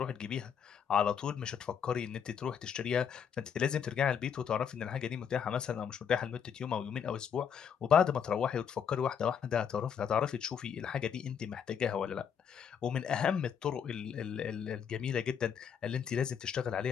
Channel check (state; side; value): quieter; right; 7.7 dB